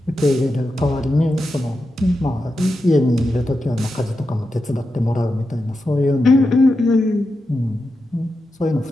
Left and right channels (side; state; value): both; normal; correlation 0.89